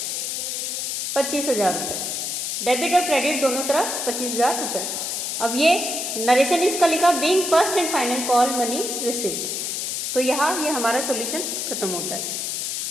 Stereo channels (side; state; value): left; noise; hiss, 2 dB below the sound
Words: 25,000 रुपये, डेबिट और क्रेडिट दोनों तरफ 25,000 रुपये। अब ये नरेशन इसका लिखा being first and final call money received, तो यहाँ ये हमारा सॉल्यूशन खत्म होता है।